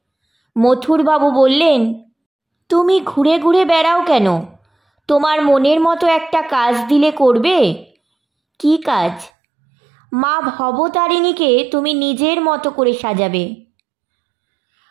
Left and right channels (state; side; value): drops out; left; at 9.3 s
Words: মথুরবাবু বললেন, তুমি ঘুরে ঘুরে বেড়াও কেন? তোমার মনের মতো একটা কাজ দিলে করবে। কি কাজ? মা ভবতারিণীকে তুমি নিজের মতো করে সাজাবে।